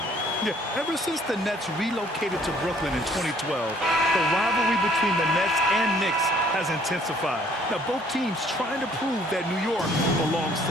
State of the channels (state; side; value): normal; both; correlation 0.60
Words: Yeah, ever since the Nets relocated to Brooklyn in 2012, the rivalry between the Nets and Knicks has intensified. Now, both teams trying to prove that New York belongs